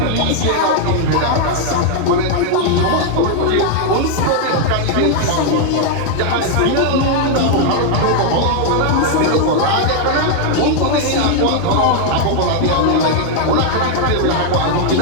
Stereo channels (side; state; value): both; different; correlation 0.00